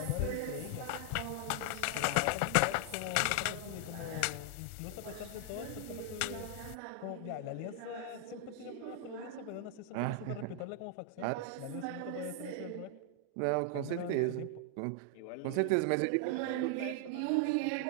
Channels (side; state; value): both; different; correlation 0.00